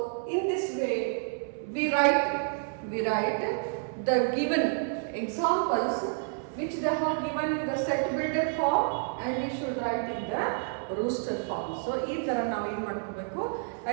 in this way we write the given examples which they have given in the set builder form, and we should write in the rooster form. So ಈ ತರ ನಾವು ಏನು ಮಾಡ್ಕೋಬೇಕು, ಆ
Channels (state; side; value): silent; left; 58 dB below the other